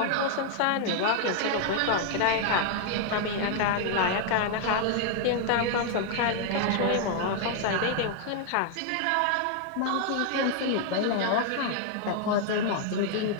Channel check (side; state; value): both; different; correlation 0.00